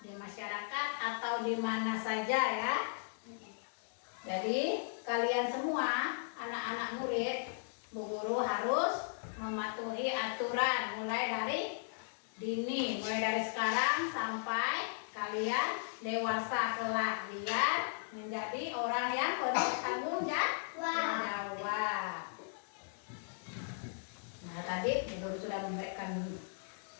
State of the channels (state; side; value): silent; right; digital silence